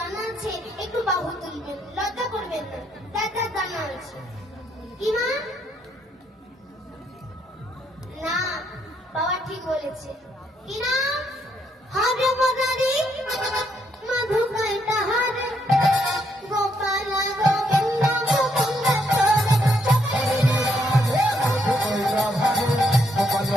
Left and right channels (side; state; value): both; normal; correlation 0.74